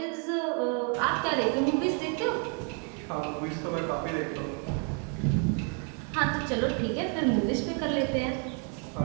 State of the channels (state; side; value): quieter; left; 39.9 dB